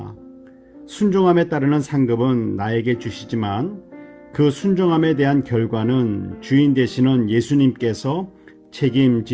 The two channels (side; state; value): both; identical; correlation 1.00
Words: 순종함에 따르는 상급은 나에게 주시지만 그 순종함에 대한 결과는 주인 되시는 예수님께서